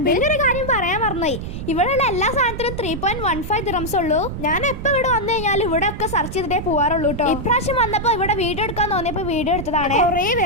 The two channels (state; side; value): noise; right; rumble, 7 dB below the sound